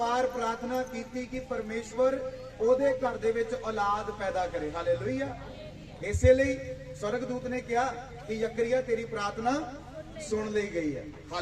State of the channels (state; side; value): identical; both; correlation 1.00